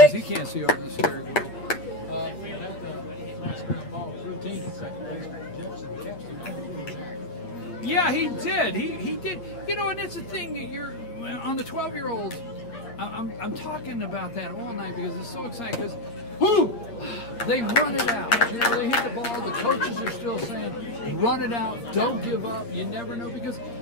he can't see over the steering wheel. Yeah, he did. He did. You know, and that's the thing that you're on the 12-year-olds. I'm talking about that all night because it's so exciting because they run it out. You know, they hit the ball. The coaches are still saying, run it out. Don't give up. You never know because,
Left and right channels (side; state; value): right; late; 8.6 ms